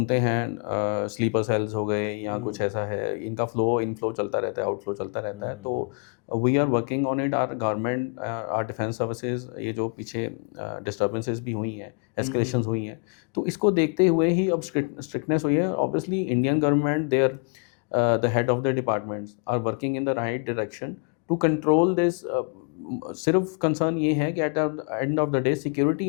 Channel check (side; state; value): right; quieter; 37.5 dB